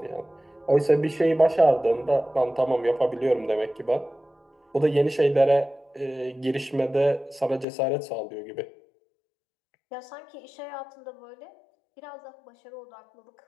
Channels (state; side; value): drops out; right; at 7.7 s